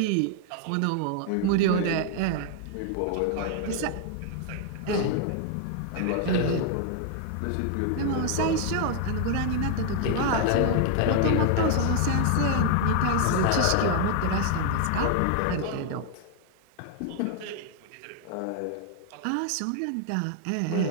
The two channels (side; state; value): both; different; correlation 0.00